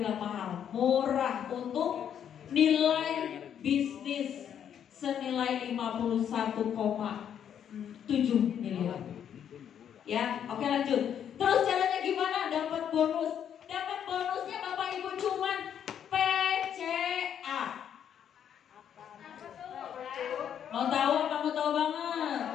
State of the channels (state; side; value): quieter; right; 9.0 dB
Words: mahal, murah untuk nilai bisnis senilai 51,7 miliar. Ya, oke lanjut. Terus caranya gimana? Dapat bonus. Dapat bonusnya Bapak Ibu cuman PCA. Mau tahu apa mau tahu banget?